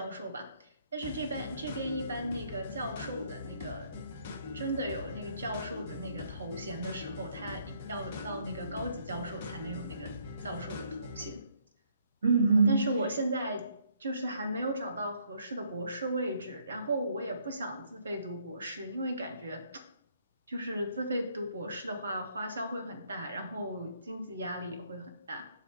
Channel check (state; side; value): inverted; both; correlation -0.68